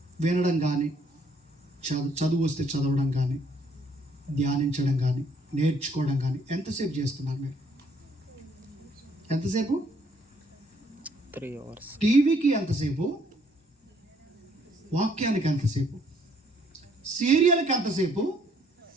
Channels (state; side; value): normal; both; correlation 0.65